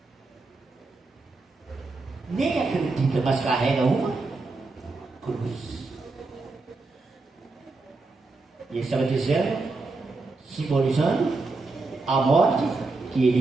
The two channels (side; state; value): left; quieter; 3.6 dB